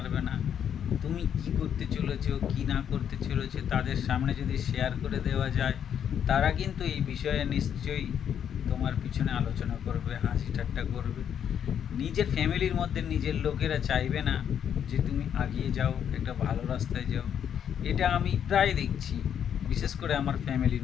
না, তুমি কি করতে চলেছো কি না করতে চলেছো তাদের সামনে যদি শেয়ার করে দেওয়া যায়, তারা কিন্তু এই বিষয়ে নিশ্চয়ই তোমার পিছনে আলোচনা করবে, হাসি ঠাট্টা করবে। নিজের ফ্যামিলির মধ্যে নিজের লোকেরা চাইবে না যে তুমি এগিয়ে যাও, একটা ভালো রাস্তায় যাও। এটা আমি প্রায় দেখছি, বিশেষ করে আমার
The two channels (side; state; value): right; quieter; 8.8 dB